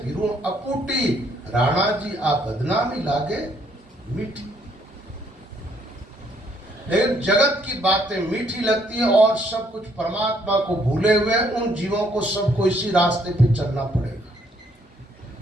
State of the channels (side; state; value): both; normal; correlation 0.68